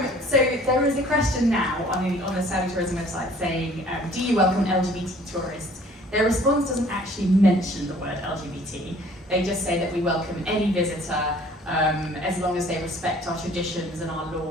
So there is a question now on the Saudi Tourism website saying, do you welcome LGBT tourists? Their response doesn't actually mention the word LGBT. They just say that we welcome any visitor as long as they respect our traditions and our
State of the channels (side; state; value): both; normal; correlation 0.54